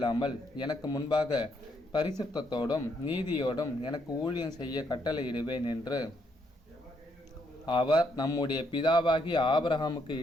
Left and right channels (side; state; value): both; normal; correlation 0.74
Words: எனக்கு முன்பாக பரிசுத்தத்தோடும் நீதியோடும் எனக்கு ஊழியம் செய்ய கட்டளையிடுவேன் என்று அவர் நம்முடைய பிதாவாகிய ஆபிரகாமுக்கு